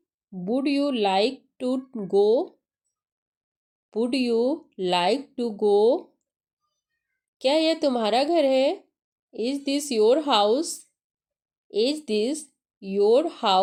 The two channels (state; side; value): identical; both; correlation 1.00